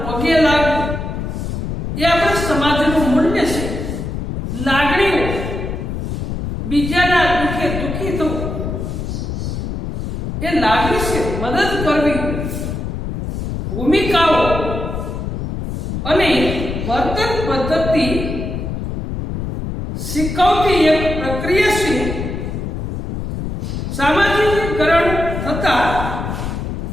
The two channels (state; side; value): noise; left; rumble, 4 dB below the sound